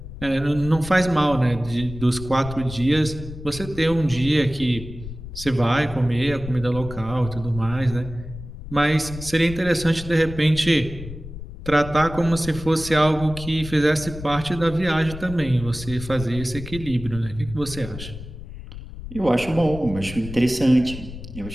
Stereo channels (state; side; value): noise; left; rumble, 12 dB below the sound